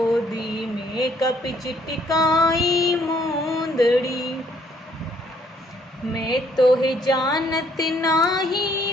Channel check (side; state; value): both; normal; correlation 0.66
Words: में कपि छिटकाई मुंदड़ी। मैं तो है जानत नाही